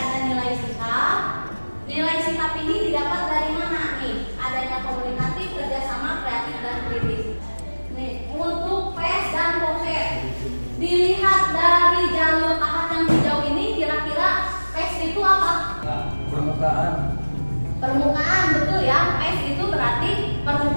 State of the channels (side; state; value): both; inverted; correlation -1.00